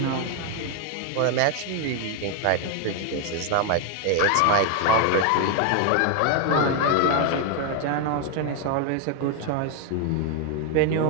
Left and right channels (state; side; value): different; both; correlation 0.01